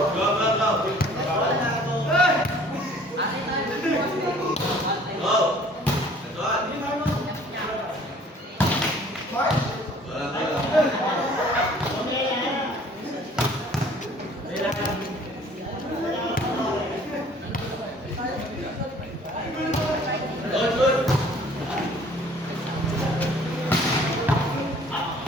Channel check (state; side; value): normal; both; correlation 0.54